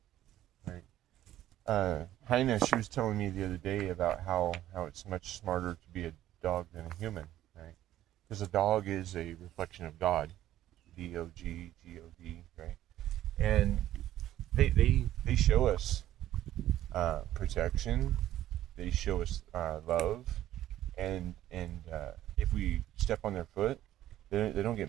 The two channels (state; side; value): quieter; left; 13.2 dB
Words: right? Heina, she was telling me the other day about how it's much smarter to be a dog than a human, right? Because a dog is a reflection of God, Dog, right? And they show us protection. They show us love, and if we step on their foot, they don't